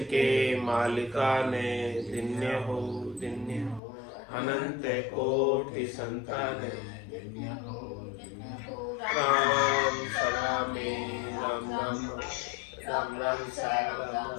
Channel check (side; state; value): right; drops out; at 3.8 s